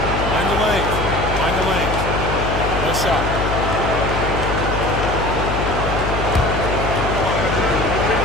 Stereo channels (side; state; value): left; noise; hum, 3 dB below the sound